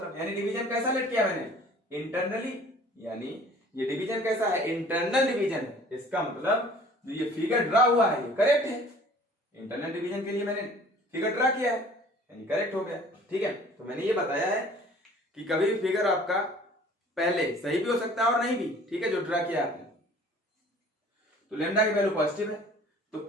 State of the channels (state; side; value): normal; both; correlation 0.50